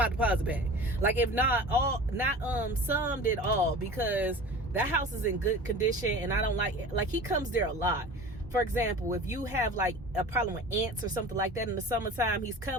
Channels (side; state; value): both; normal; correlation 0.38